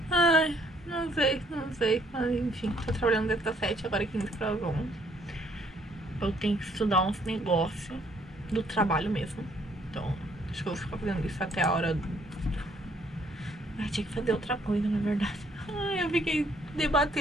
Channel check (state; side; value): normal; both; correlation 0.65